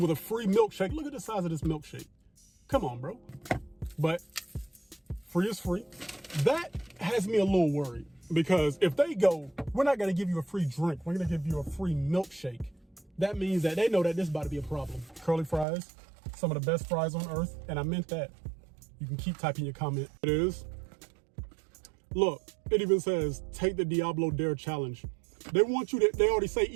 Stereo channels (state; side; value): drops out; left; at 15.7 s